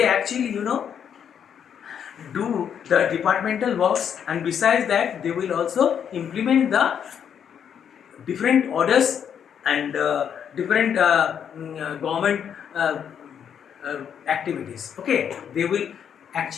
actually do the departmental works, and besides that they will also implement the different orders and different government activities. Okay, they will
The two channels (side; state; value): right; quieter; 8.3 dB